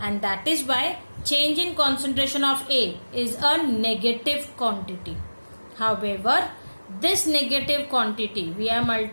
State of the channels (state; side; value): inverted; both; correlation -1.00